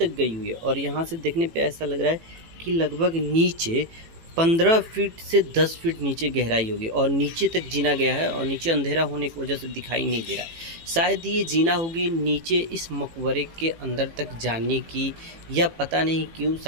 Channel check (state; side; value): late; left; 18 ms